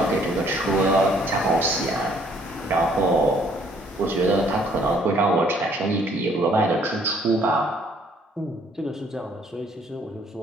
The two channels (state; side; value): normal; both; correlation 0.62